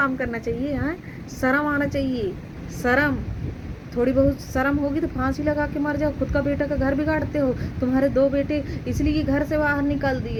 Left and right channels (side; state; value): both; identical; correlation 1.00